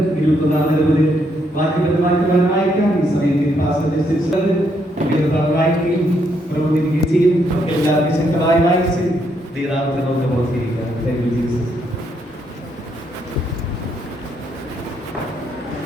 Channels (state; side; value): normal; both; correlation 0.75